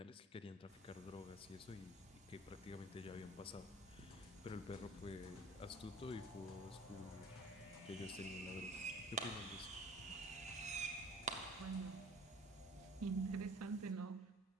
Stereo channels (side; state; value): both; normal; correlation 0.47